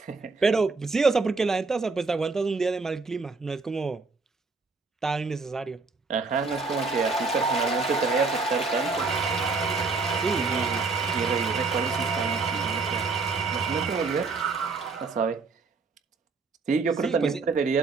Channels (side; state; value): left; quieter; 4.2 dB